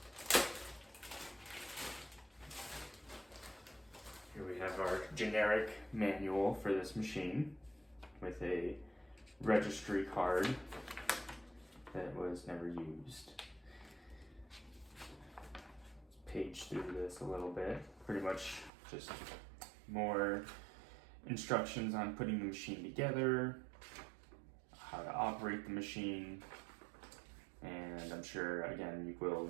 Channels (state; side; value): drops out; left; at 18.7 s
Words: Here we have our generic manual for this machine with a registry card that was never used. Page through this a little bit. Pretty much just more instructions on putting the machine together, how to operate the machine, and I'm sure again you will